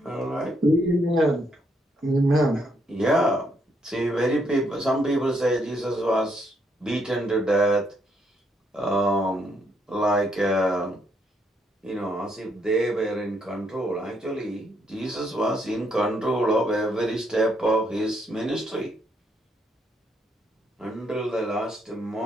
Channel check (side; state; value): both; normal; correlation 0.74